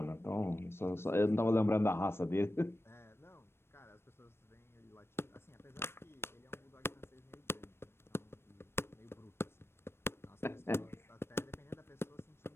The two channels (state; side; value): late; right; 0.12 ms